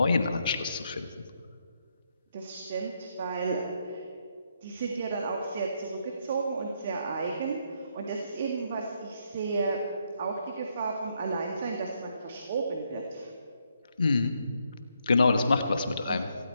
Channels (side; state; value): both; inverted; correlation -0.76